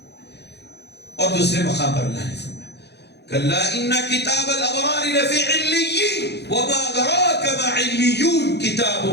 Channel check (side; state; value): right; late; 0.49 ms